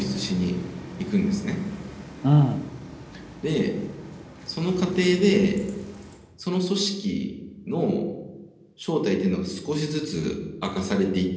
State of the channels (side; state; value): both; identical; correlation 1.00